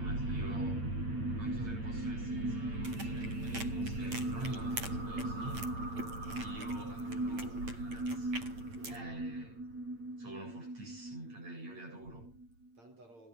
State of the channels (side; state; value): left; late; 8.7 ms